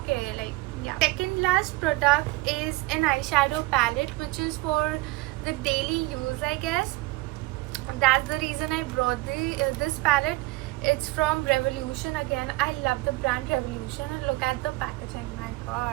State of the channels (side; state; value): left; quieter; 21.4 dB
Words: Like, yeah. Second last product is an eyeshadow palette, which is for the daily use, I guess. That's the reason I brought this palette. It's from Revolution again. I love the brand Revolution, and look at the packaging. My